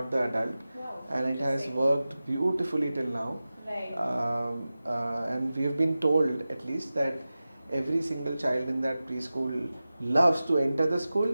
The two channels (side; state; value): both; inverted; correlation -0.95